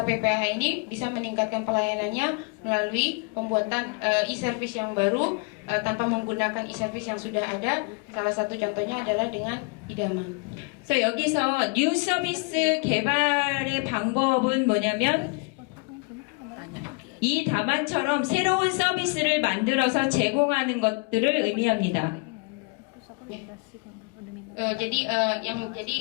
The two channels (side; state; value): right; quieter; 31.2 dB